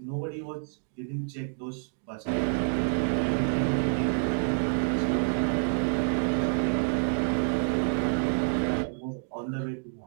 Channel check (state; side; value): silent; left; 59 dB below the other